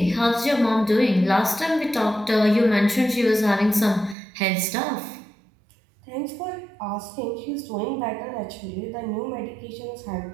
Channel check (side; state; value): left; drops out; at 4.2 s